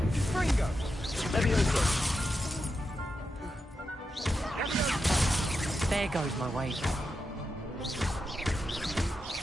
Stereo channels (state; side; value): normal; both; correlation 0.87